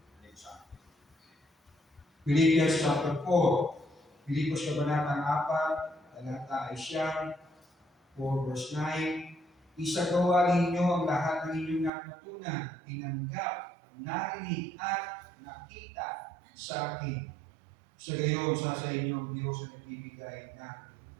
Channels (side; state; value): left; drops out; at 11.9 s